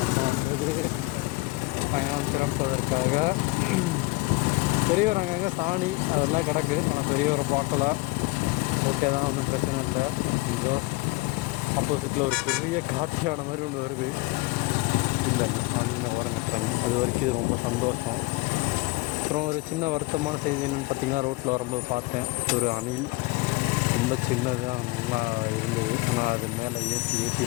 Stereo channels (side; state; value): right; quieter; 22.8 dB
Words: வந்து பயணம் சிறப்பதற்காக. பெரியவர் அங்கங்கே சாணி அதெல்லாம் கிடக்கு, ஆனால் பெரியவரை பார்க்கல. ஓகே தான், ஒன்றும் பிரச்சனை இல்லை. இதோ ஆப்போசிட்டில் ஒரு பெரிய காட்டியான மாதிரி ஒன்று வருது. இல்லை அவங்க ஓரங்கட்டுறாங்க, அது வரைக்கும் இது ரொம்ப சந்தோஷம். அப்புறம் ஒரு சின்ன வருத்தமான செய்தி என்னென்னு பார்த்தீங்கன்னா, ரோட்டில் வரும்போது பார்த்தேன் ஒரு அணில். ரொம்ப சின்னதாக நல்லா இருந்தது, ஆனால் அது மேலே